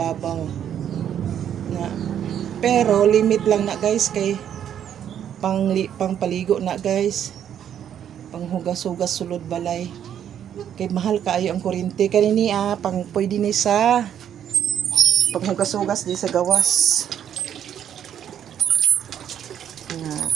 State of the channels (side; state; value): left; quieter; 9.6 dB